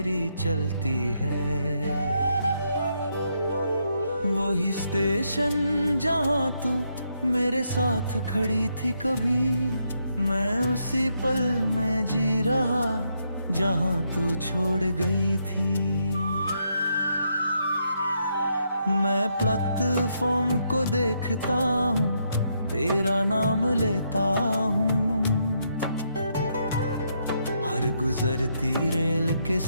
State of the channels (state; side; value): inverted; both; correlation -0.78